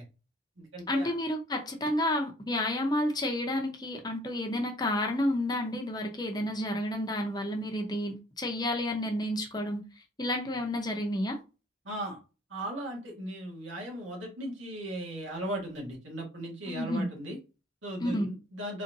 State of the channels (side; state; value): both; normal; correlation 0.57